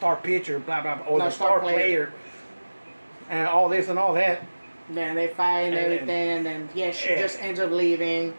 pitcher, blah blah blah, or the star player, and all this and all that. Then they fight and everything, and then she just ends up leaving,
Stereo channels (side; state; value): both; inverted; correlation -1.00